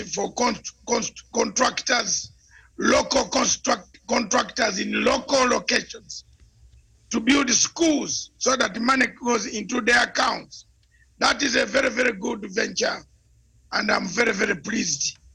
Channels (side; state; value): both; identical; correlation 1.00